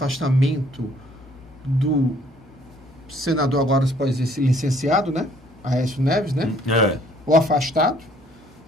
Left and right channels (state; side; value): normal; both; correlation 0.61